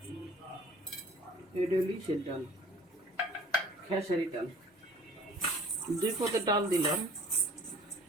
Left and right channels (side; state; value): both; normal; correlation 0.50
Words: এটা লিচের ডাল, খেসারি ডাল, 2 পদের ডাল দিলাম।